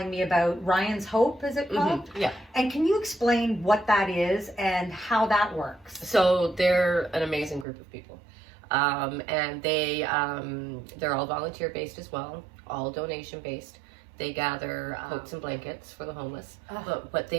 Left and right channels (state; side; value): drops out; left; at 7.7 s